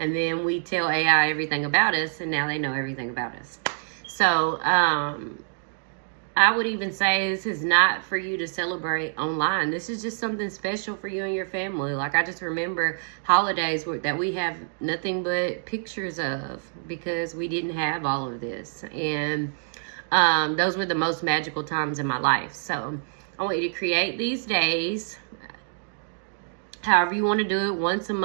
then we tell AI everything about us, and now they know everything about us. So I would even say this is not for you to celebrate online. This is just something special for you and your family. Like, I just remember holidays that we have nothing but pictures of, because we didn't have all of this. And those were the most magical times in my life. So I want you to create these days, however you want to do it, once a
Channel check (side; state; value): left; silent; digital silence